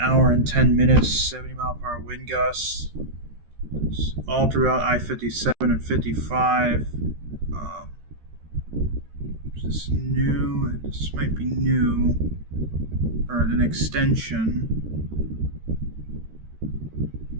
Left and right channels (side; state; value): left; late; 13 ms